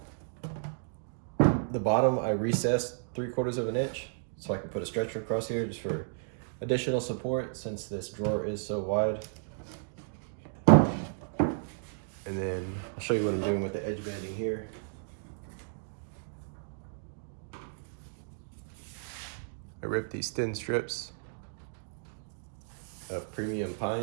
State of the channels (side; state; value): left; silent; digital silence